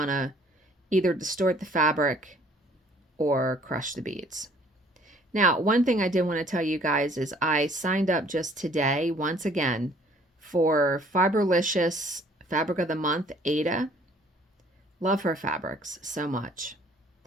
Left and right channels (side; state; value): both; normal; correlation 0.58